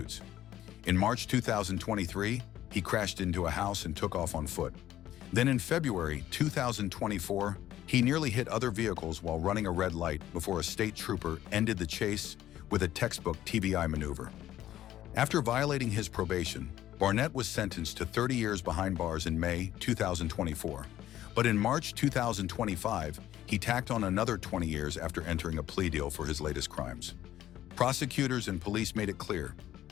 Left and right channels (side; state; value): right; quieter; 13.0 dB